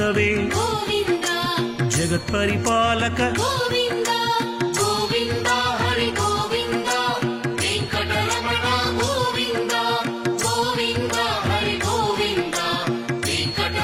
గోవింద జగత్పరిపాలక గోవింద గోవింద హరి గోవింద వెంకటరమణ గోవింద గోవింద హరి గోవింద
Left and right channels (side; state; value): both; identical; correlation 1.00